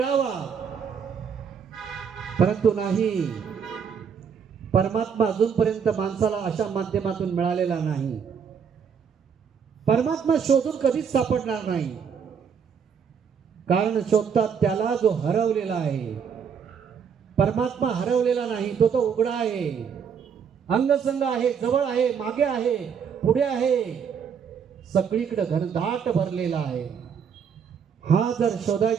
परंतु नाही, परमात्मा अजूनपर्यंत माणसाला अशा माध्यमातून मिळालेला नाही. परमात्मा शोधून कधीच सापडणार नाही, कारण शोधतात त्याला जो हरवलेला आहे. परमात्मा हरवलेला नाही, तो तो उघडा आहे, अंगसंग आहे, जवळ आहे, मागे आहे, पुढे आहे, सगळीकडे घनदाट भरलेला आहे. हा जर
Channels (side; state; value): left; quieter; 7.0 dB